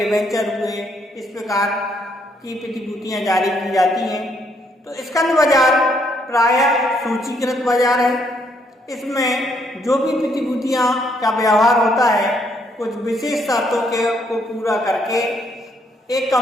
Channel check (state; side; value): normal; both; correlation 0.71